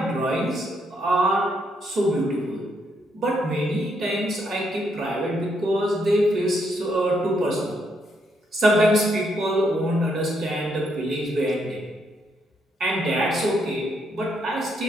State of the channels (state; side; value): normal; both; correlation 0.76